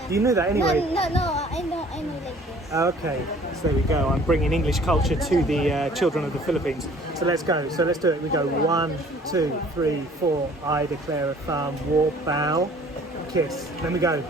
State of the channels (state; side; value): normal; both; correlation 0.54